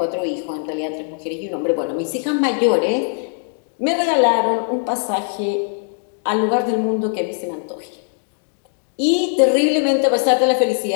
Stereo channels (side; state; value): right; silent; 61 dB below the other